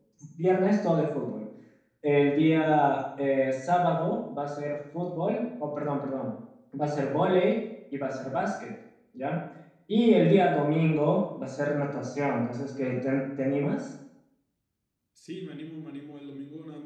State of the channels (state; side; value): identical; both; correlation 1.00